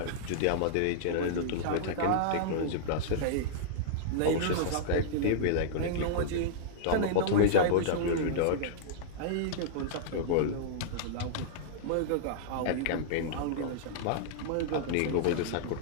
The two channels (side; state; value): both; different; correlation -0.02